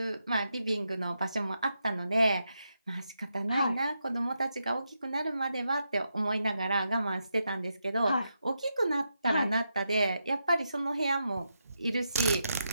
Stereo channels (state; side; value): inverted; both; correlation -0.84